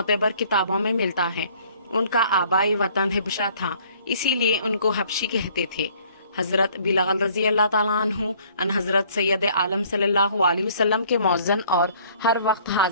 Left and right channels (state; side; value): inverted; both; correlation -0.58